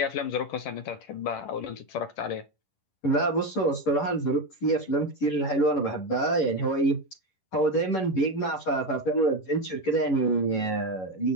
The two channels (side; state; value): right; late; 11 ms